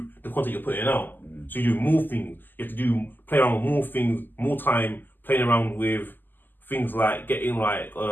the content you're putting out. So you do more things. You have to play around with more things, more time playing around with things like getting like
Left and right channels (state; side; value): late; right; 0.090 ms